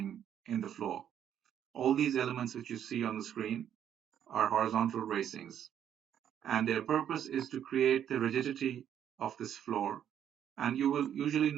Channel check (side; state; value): left; quieter; 9.7 dB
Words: in the floor. All these elements which you see on the screen are horizontal bracings, and their purpose is to create the rigidity of this floor. And you will usually